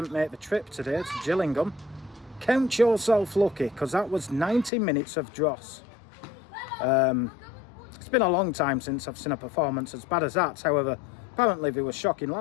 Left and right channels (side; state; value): right; drops out; at 4.7 s